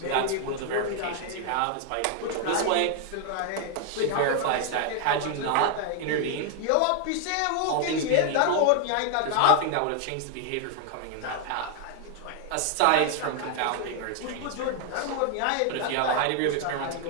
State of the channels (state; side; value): different; both; correlation 0.00